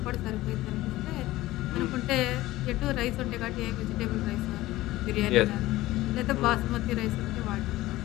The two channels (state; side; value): quieter; right; 17.1 dB